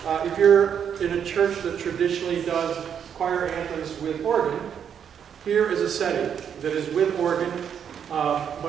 if you're in a church that traditionally does choir anthems with organ, here is a setting that is with organ,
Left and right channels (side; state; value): left; quieter; 8.1 dB